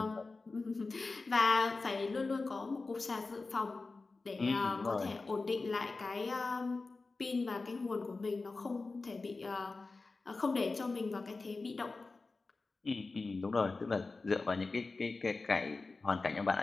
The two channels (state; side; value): quieter; right; 3.8 dB